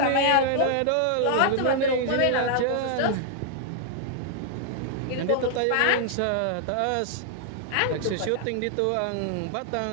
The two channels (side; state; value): both; different; correlation 0.00